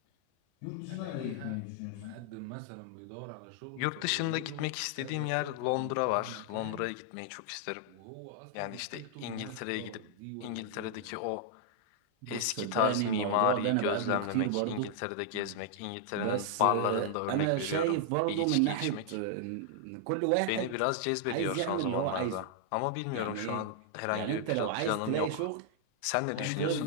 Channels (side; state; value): both; different; correlation -0.01